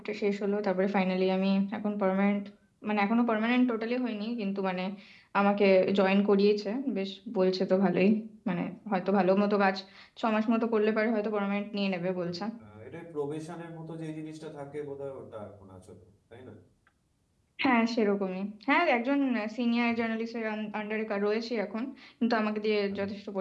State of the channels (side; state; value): both; identical; correlation 1.00